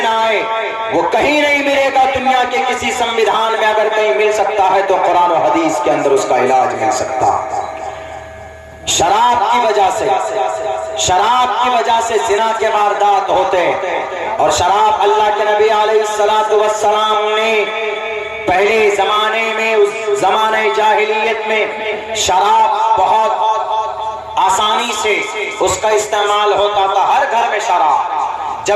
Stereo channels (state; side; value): identical; both; correlation 1.00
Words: نہ آئے۔ وہ کہیں نہیں ملے گا دنیا کے کسی سمویدھان میں، اگر کہیں مل سکتا ہے تو قرآن و حدیث کے اندر اس کا علاج مل سکتا۔ شراب کی وجہ سے زنا کے واردات ہوتے، اور شراب اللہ کے نبی علیہ السلام نے پہلے زمانے میں، اس زمانہ جاہلیت میں شراب بہت آسانی سے اس کا استعمال ہوتا تھا، ہر گھر میں شراب۔